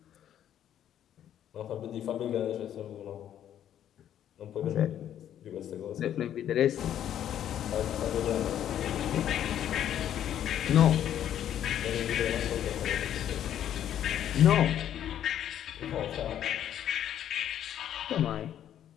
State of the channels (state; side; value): quieter; right; 10.6 dB